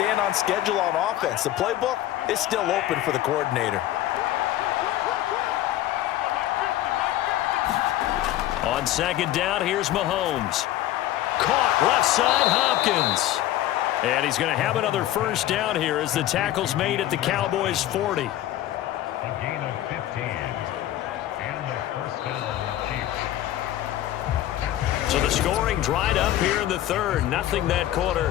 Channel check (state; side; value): quieter; right; 13.7 dB